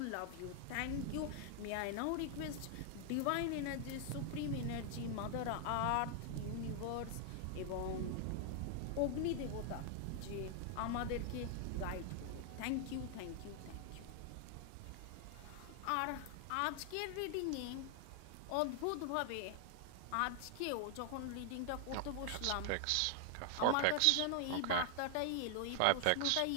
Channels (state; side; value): different; both; correlation 0.00